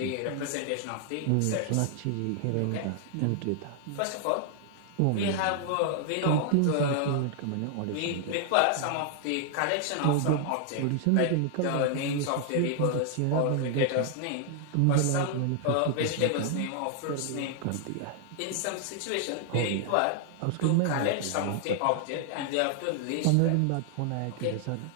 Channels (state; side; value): different; both; correlation 0.00